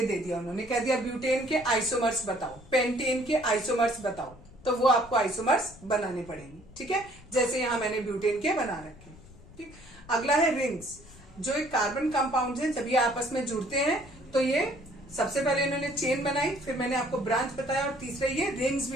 दे दिया, उन्होंने कह दिया ब्यूटेन के आइसोमर्स बताओ, पेंटेन के आइसोमर्स बताओ, तो वो आपको आइसोमर्स बनाने पड़ेंगे। ठीक है, जैसे यहां मैंने ब्यूटेन के बना रखे। ठीक, अगला है रिंग्स, जो एक कार्बन कंपाउंड है, जब ये आपस में जुड़ते हैं तो ये, सबसे पहले इन्होंने चेन बनाई, फिर मैंने आपको ब्रांच बताया, और तीसरे ये रिंग्स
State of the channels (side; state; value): left; noise; rumble, 21 dB below the sound